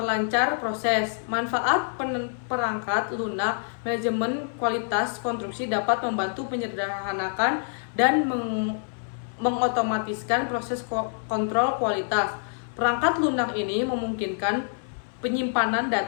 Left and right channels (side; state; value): right; silent; 58 dB below the other